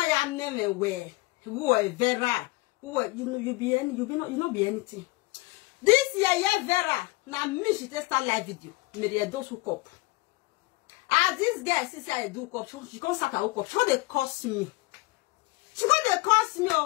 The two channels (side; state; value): right; quieter; 22.8 dB